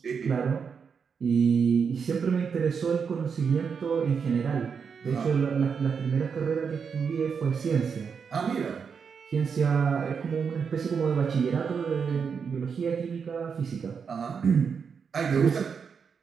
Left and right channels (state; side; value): quieter; left; 6.2 dB